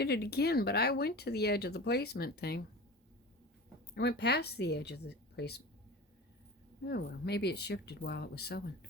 it again, but I went to the edge of the placement thing. I went past the edge of the placement. Oh well, maybe it shifted while it was sewing.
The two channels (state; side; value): normal; both; correlation 0.34